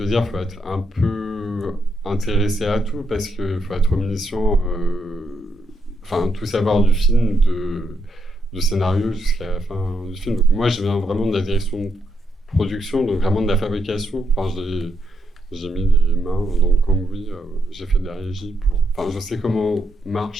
dire, il faut être un peu intéressé à tout, parce qu'il faut être omniscient, tout savoir du film, du scénario jusqu'à la fin du film. Donc moi je viens vraiment de la direction de production, donc vraiment de la fabrication. J'ai mis les mains dans le cambouis, j'ai fait de la régie je sais comment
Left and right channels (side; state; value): both; normal; correlation 0.79